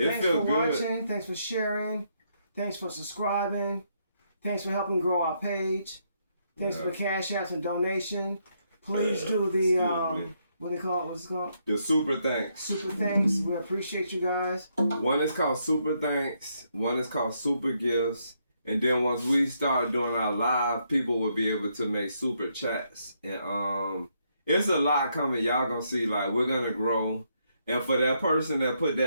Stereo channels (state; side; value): inverted; both; correlation -0.76